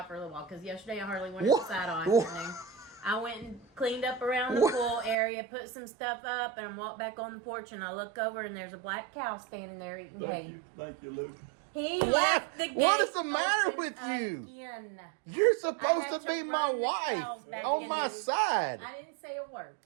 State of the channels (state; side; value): drops out; left; at 5.2 s